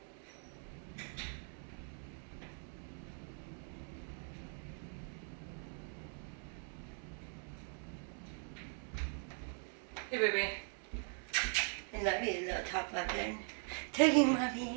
Hey, baby. I love you, little top muffin. Taking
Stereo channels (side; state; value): left; silent; 50 dB below the other